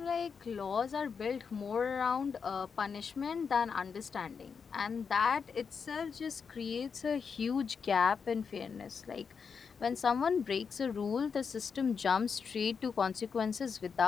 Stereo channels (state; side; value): quieter; right; 6.0 dB